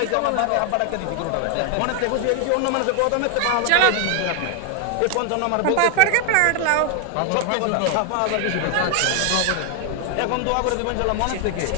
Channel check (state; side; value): different; both; correlation 0.00